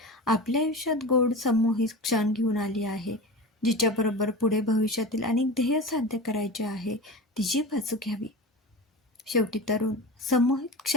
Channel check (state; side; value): normal; both; correlation 0.30